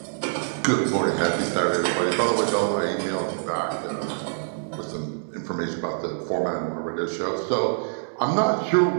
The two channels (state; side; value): silent; left; digital silence